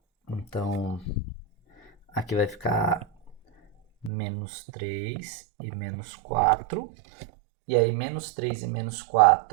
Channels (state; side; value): drops out; left; at 4.1 s